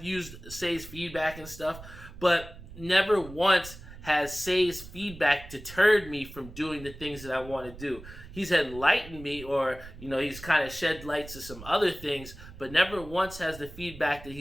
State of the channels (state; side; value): noise; right; rumble, 15 dB below the sound